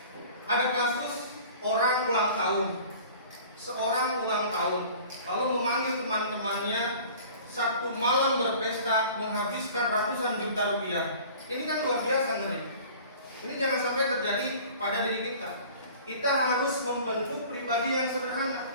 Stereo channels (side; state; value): both; inverted; correlation -0.45